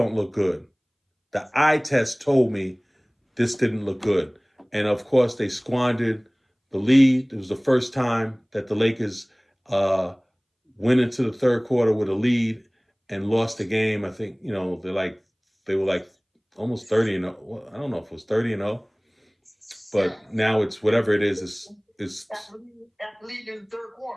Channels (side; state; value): both; identical; correlation 1.00